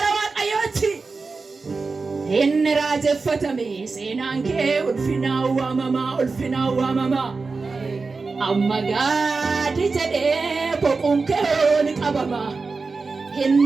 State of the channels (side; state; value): left; quieter; 4.2 dB